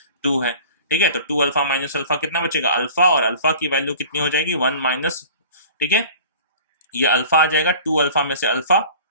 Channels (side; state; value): both; inverted; correlation -0.42